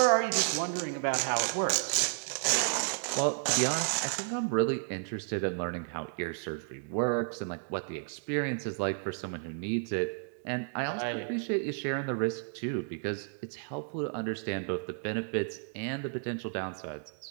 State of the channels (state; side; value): silent; left; digital silence